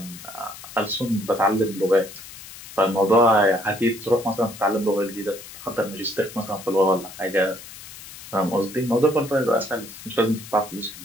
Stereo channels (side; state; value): left; noise; hiss, 15 dB below the sound